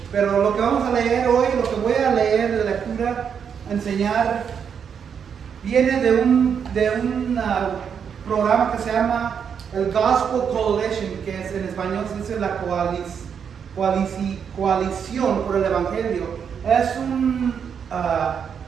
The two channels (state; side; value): quieter; left; 7.3 dB